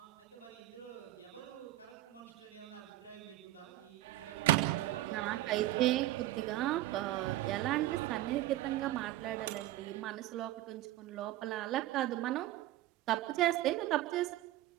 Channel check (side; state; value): left; quieter; 15.4 dB